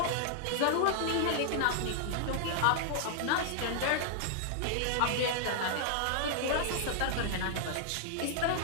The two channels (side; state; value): both; different; correlation -0.01